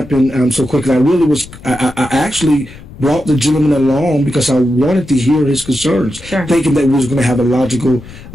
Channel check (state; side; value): noise; left; rumble, 18 dB below the sound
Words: so quickly. I actually brought the gentleman along because I wanted to hear his concerns, thinking that we was going to have a logical,